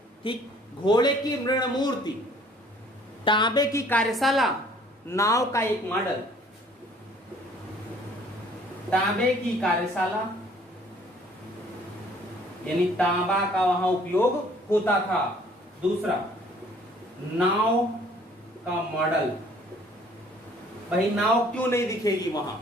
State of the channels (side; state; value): both; normal; correlation 0.57